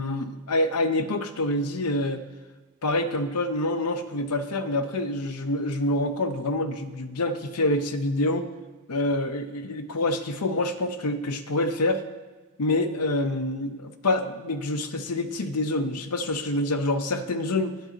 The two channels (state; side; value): normal; both; correlation -0.14